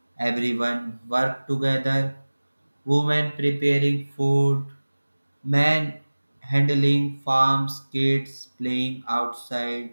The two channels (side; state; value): both; inverted; correlation -1.00